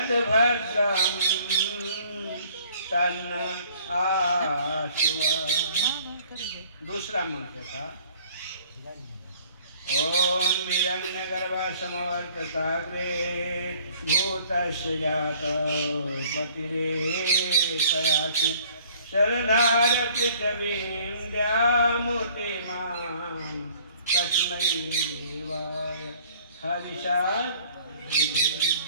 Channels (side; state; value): both; inverted; correlation -0.55